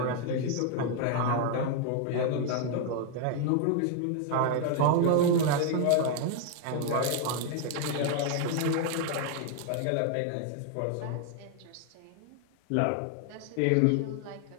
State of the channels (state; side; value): different; both; correlation 0.00